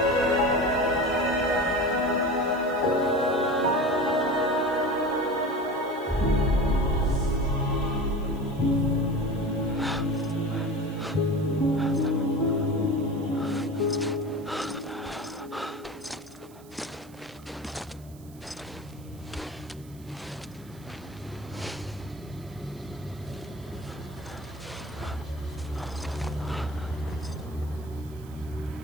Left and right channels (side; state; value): right; noise; hiss, 24 dB below the sound